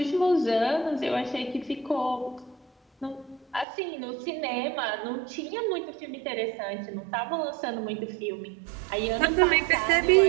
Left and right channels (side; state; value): left; drops out; at 3.7 s